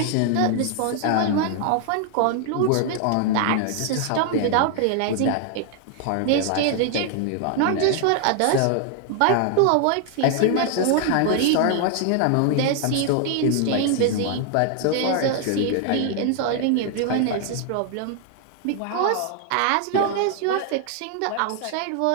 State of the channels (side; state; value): both; different; correlation 0.00